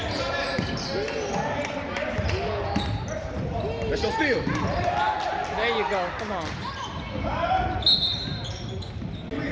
That's your steal. There you go. Come on.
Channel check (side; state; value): both; identical; correlation 1.00